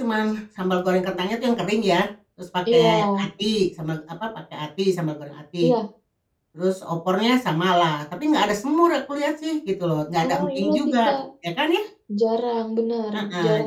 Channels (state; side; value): identical; both; correlation 1.00